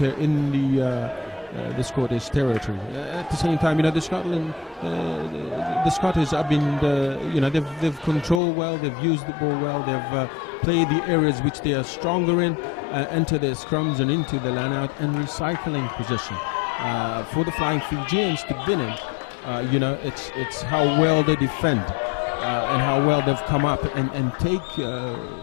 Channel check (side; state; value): right; drops out; at 8.4 s